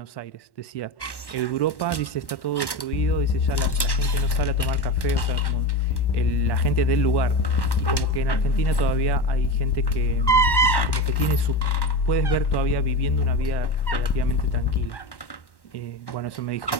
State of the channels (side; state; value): right; late; 1.1 ms